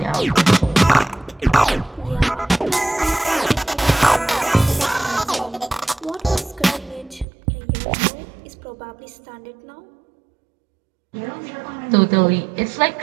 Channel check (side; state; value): left; drops out; at 7.2 s